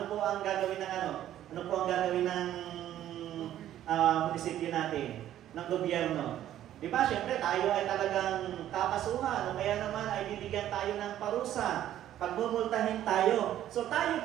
po ang gagawin ng Ano po ang gagawin ng munisipyo natin? Ng gobyerno? Di ba? Siyempre, tayo ay talagang kakasuhan. O kaya naman ay bibigyan tayo ng parusa. Pagmumultahin tayo. So tayo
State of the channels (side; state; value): left; quieter; 12.1 dB